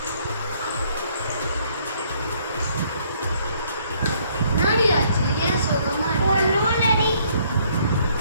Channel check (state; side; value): inverted; both; correlation -0.65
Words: நாடி ஆச்சு ஏன் சோகமா ஒண்ணுலடி